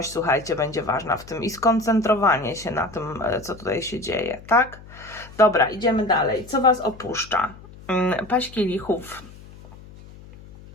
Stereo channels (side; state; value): left; noise; hum, 19 dB below the sound